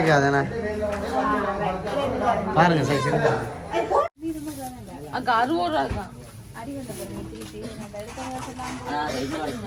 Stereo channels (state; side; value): identical; both; correlation 1.00